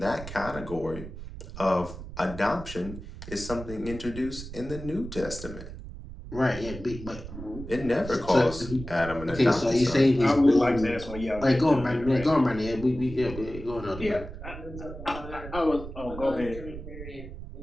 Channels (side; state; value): right; noise; rumble, 11 dB below the sound